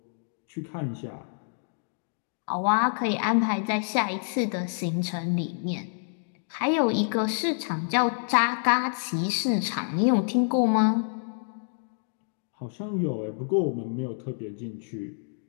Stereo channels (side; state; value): right; silent; digital silence